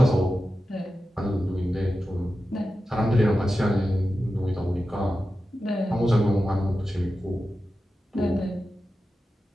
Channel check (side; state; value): both; normal; correlation 0.92